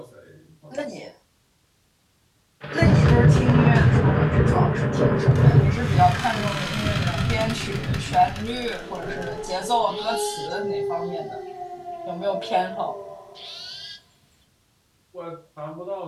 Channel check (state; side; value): identical; both; correlation 1.00